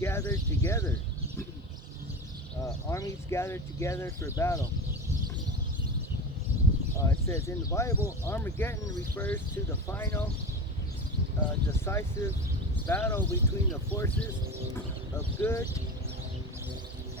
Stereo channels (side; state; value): both; normal; correlation 0.28